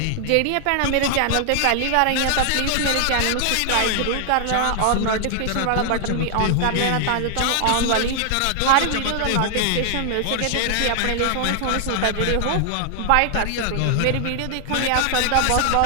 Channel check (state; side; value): different; both; correlation 0.00